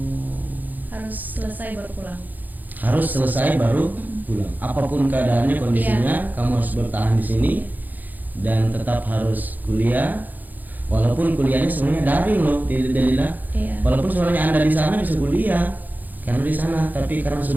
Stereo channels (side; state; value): left; late; 0.084 ms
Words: Harus selesai baru pulang. Harus selesai baru pulang. Apapun keadaannya, kondisinya, kamu harus bertahan di sini dan tetap harus kuliah. Walaupun kuliahnya sebenarnya daring loh, Delila. Iya. Walaupun sebenarnya Anda di sana bisa kuliah karena di sana, tapi karena